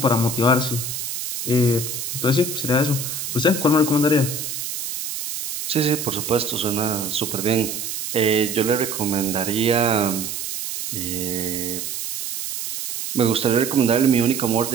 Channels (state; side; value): noise; right; hiss, 5 dB below the sound